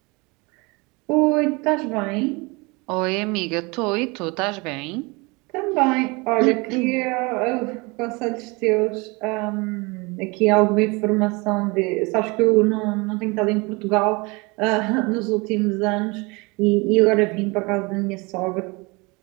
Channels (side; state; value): left; quieter; 26.9 dB